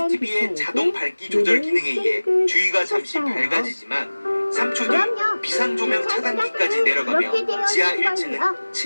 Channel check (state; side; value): inverted; both; correlation -1.00